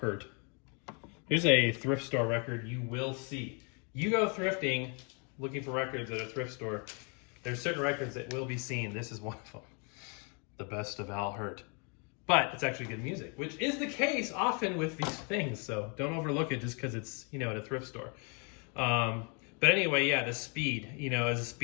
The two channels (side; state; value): right; quieter; 35.7 dB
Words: Here's a thrift store record you will see. You go thrifting, looking for records at a thrift store, there's certain records that will be seen. This is one of them. The best of Al Hirt. But it's actually good music, which is the case often with these things. So don't overlook it just because it's, at a thrift store. But anyway, yeah, the speed, is a